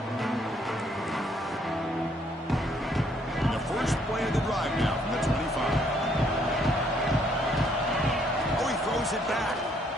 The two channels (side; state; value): both; normal; correlation 0.67